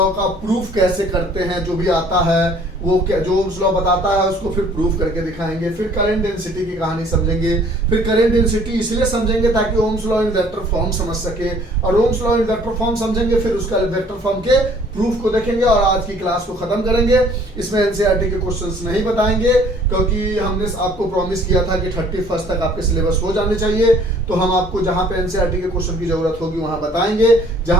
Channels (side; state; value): both; normal; correlation 0.56